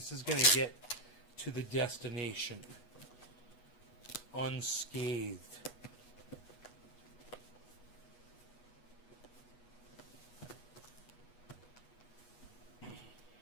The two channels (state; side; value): late; right; 8.3 ms